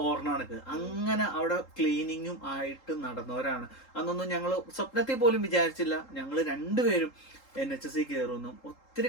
ഓർണാണക്ക് അങ്ങനെ അവിടെ ക്ലീനിങ്ങും ആയിട്ട് നടന്നവരാണ്. അന്നൊന്നും ഞങ്ങൾ സ്വപ്നത്തിൽ പോലും വിചാരിച്ചില്ല ഞങ്ങൾ രണ്ടുപേരും NHS കയറുന്നു. ഒത്തിരി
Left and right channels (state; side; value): late; right; 3.8 ms